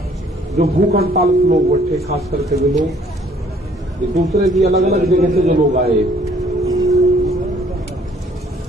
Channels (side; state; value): both; normal; correlation 0.60